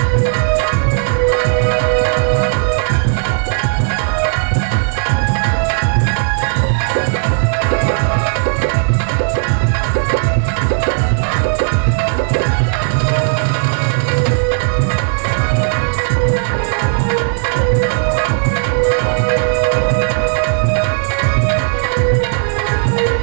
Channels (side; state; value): left; silent; digital silence